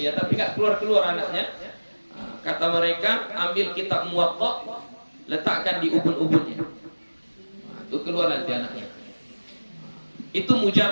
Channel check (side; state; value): both; inverted; correlation -1.00